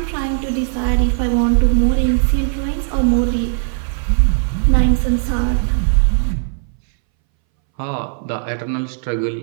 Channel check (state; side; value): silent; left; 65 dB below the other